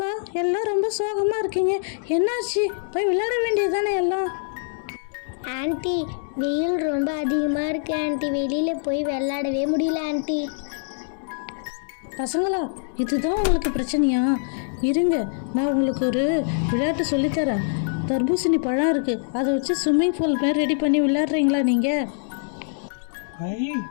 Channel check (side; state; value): right; silent; digital silence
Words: எல்லாம் ரொம்ப சோகமா இருக்கீங்க? என்னாச்சு? போய் விளையாட வேண்டியது தானே எல்லாம். ஆன்ட்டி, வெயில் ரொம்ப அதிகமாக இருக்கு ஆன்ட்டி, வெளியில் போய் விளையாடவே முடியல ஆன்ட்டி. பசங்களா, இதுதான் உங்களுக்கு பிரச்சனையா? இருங்க, நான் உங்களுக்கு ஒரு விளையாட்டு சொல்லித்தரேன். தர்பூசணி பழம் இருக்கு, அதை வச்சு ஸ்விம்மிங் பூல் மாதிரி ரெடி பண்ணி விளையாடுறீங்களா நீங்க? ஐ